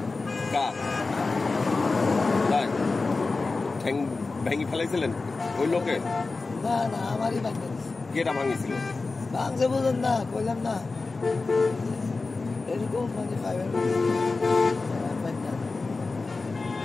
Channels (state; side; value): quieter; right; 3.8 dB